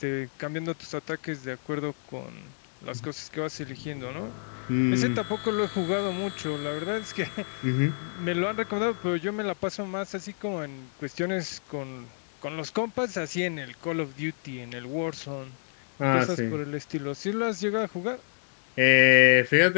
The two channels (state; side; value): silent; right; 59 dB below the other